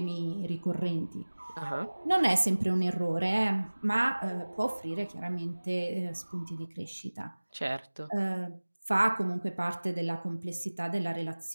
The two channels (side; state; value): both; inverted; correlation -1.00